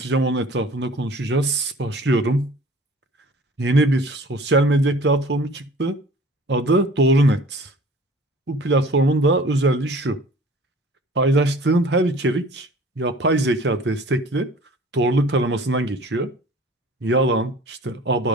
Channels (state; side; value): normal; both; correlation 0.47